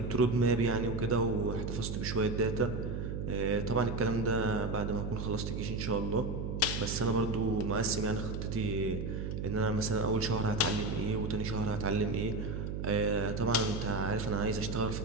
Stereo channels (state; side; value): noise; right; hum, 3 dB below the sound